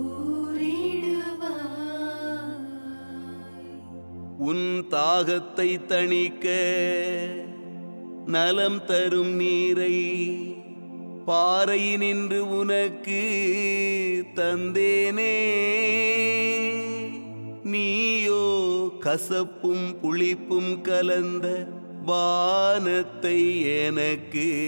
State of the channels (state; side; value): inverted; both; correlation -1.00